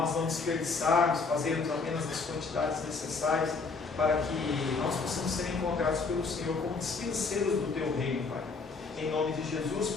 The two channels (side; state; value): right; quieter; 4.4 dB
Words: não desperdiçarmos, fazermos apenas as quantidades necessárias para que nós possamos ser encontrados pelo Senhor como dispenseiros do Teu reino, Pai. Em nome de Jesus,